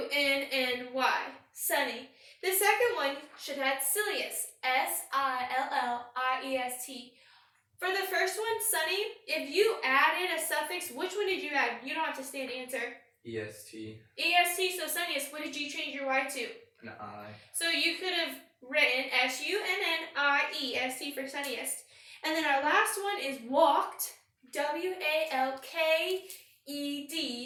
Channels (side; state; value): both; identical; correlation 1.00